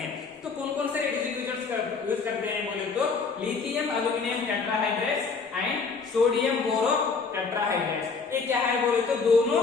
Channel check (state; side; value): quieter; right; 4.8 dB